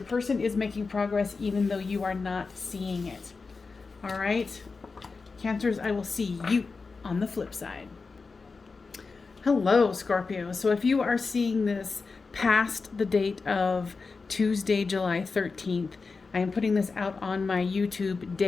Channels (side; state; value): right; quieter; 4.4 dB